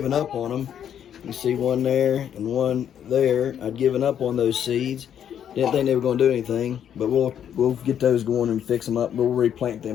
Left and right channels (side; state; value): right; quieter; 9.3 dB